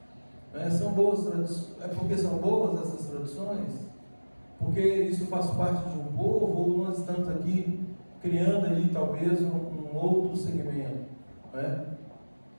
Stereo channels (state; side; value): inverted; both; correlation -1.00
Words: São boas tradições. É porque são boas essas tradições? Porque isso faz parte de um povo, ou nós estamos aqui criando aí talvez um outro segmento?